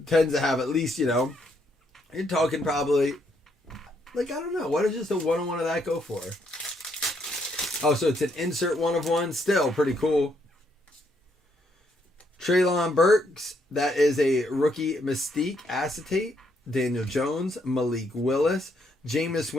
to have at least, you're talking probably, like, I don't know. What does just a 1 of 1 of that go for? Oh, so it's an insert 1 of 1. Still pretty cool. Treylon Burks. That is a rookie Mystique acetate. Daniel Jones. Malik Willis. Jameis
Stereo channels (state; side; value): normal; both; correlation 0.73